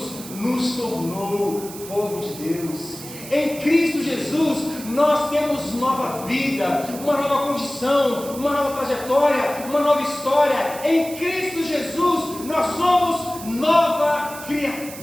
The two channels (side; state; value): right; noise; hiss, 14 dB below the sound